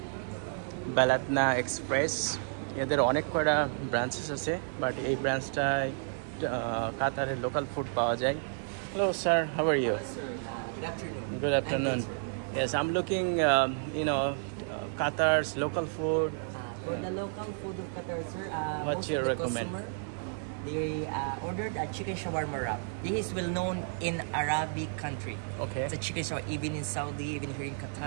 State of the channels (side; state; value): left; silent; digital silence